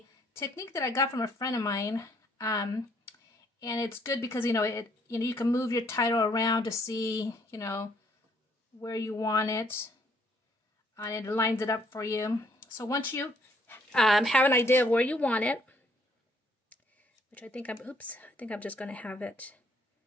technique that I got from a friend of mine, and it's good because you can move your title around to see where you want it, and it lines it up for you. So once you have an idea of where you want it, which I think I'm just going to have it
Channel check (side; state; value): both; normal; correlation 0.66